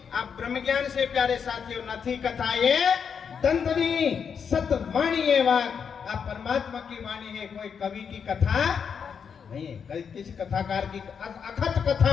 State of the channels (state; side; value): quieter; right; 6.8 dB